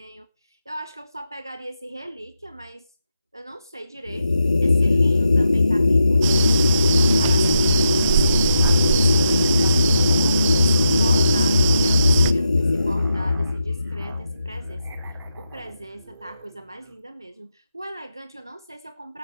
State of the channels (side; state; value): both; inverted; correlation -0.84